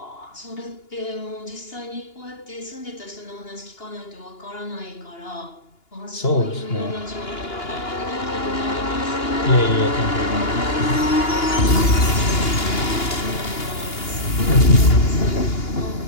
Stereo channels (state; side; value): late; right; 2.9 ms